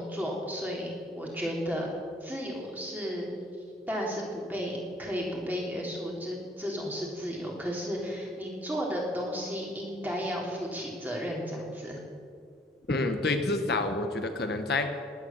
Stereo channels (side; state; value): both; normal; correlation 0.60